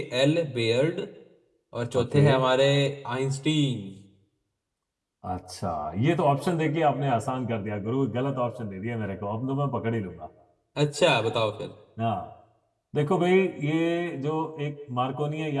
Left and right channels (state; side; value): identical; both; correlation 1.00